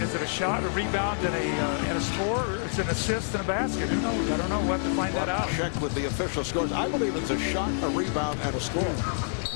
is it a shot, a rebound, and a score, or is it an assist and a basket? Who knows? I don't know. We'll have to find that out. Check with the official scores. I believe it's a shot, a rebound, and a score.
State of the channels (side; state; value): right; silent; 60 dB below the other